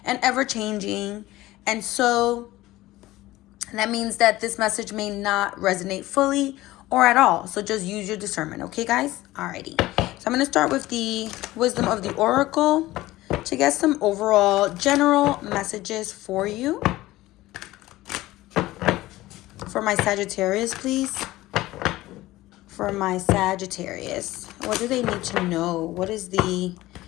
and ever changing. And so that means that this message may not resonate fully or at all. So just use your discernment, okay, guys? Alrighty. So I'm going to start with the wisdom of the Oracle to get some overall general messages for you. For my Sagittarius, please. For my Sagittarius, what do they need to know? What is the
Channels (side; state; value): right; quieter; 17.3 dB